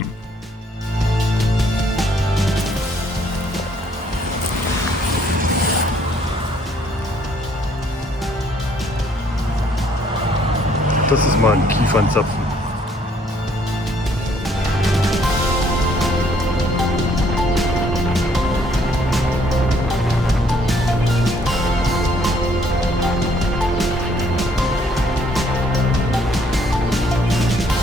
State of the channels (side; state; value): both; normal; correlation 0.65